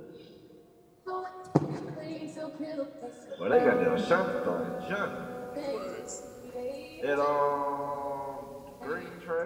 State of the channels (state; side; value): identical; both; correlation 1.00